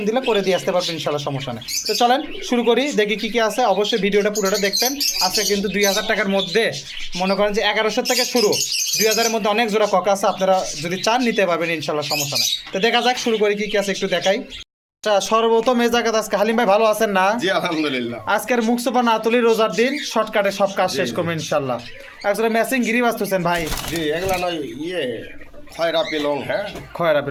দিলে করে দিয়ে আসতে পারবেন, ইনশাআল্লাহ, সমস্যা নেই। তো চলেন শুরু করি, দেখি কী আছে। অবশ্যই ভিডিওটা পুরোটা দেখবেন। আজকে কিন্তু 2000 টাকার মধ্যে, মনে করেন যে 1100 থেকে শুরু, 2000-এর মধ্যে অনেক জোড়া ককা আছে। আপনারা যদি চান নিতে পারবেন, ইনশাআল্লাহ, সমস্যা নেই। তো দেখা যাক, শুরু করি, কী আছে একটু দেখাই। সর্বপ্রথম এই জায়গাতে আজকে হালিম ভাই ভালো আছেন না? জি আলহামদুলিল্লাহ। আজকের মুখ সোপা না তুলি, রোজার দিন শর্টকাটে সব কাজ শেষ করবেন, ইনশাআল্লাহ। একজোড়া ম্যাচিং গিরি বাঁচতেছেন ভাই। জি এগুলা নয় খয়রা পিলং। হ্যাঁ, খয়রা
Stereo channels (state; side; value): identical; both; correlation 1.00